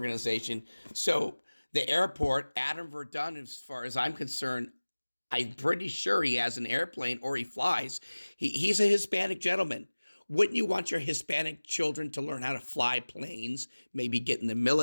So the airport, Adam Verdun, as far as I'm concerned, I'm pretty sure he has an airplane or he flies. He's a Hispanic gentleman. Wouldn't you want your Hispanic children to learn how to fly planes, maybe get in the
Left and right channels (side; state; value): both; inverted; correlation -1.00